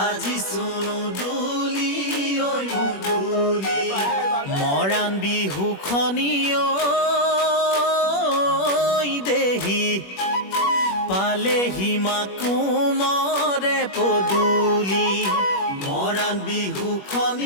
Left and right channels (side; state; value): right; late; 21 ms